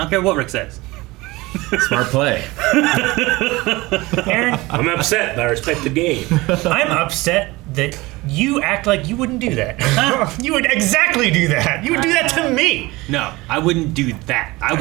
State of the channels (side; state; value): left; quieter; 21.4 dB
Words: care what Rick says. Smart play. Aaron, I'm upset, but I respect the game. I'm upset that you act like you wouldn't do that. You would exactly do that. You would do that to me. No, I wouldn't do that. I